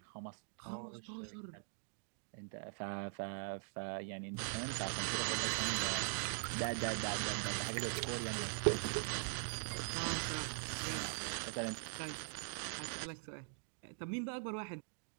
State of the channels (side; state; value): left; silent; digital silence